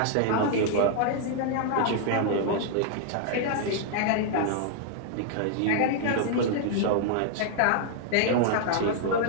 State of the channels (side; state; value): both; different; correlation -0.01